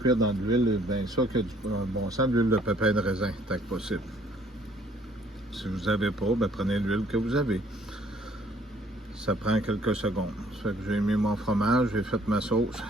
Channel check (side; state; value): both; normal; correlation 0.61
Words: dans de l'huile, bien ça, que du bon sens, de l'huile de pépins de raisin, tant que possible. Si vous n'avez pas, ben prenez l'huile que vous avez. Ça prend quelques secondes. Ça fait que j'ai mis mon fromage, j'ai fait ma sauce.